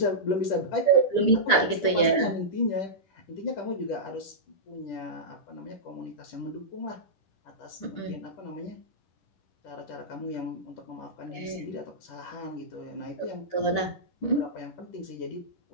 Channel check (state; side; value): late; right; 9.8 ms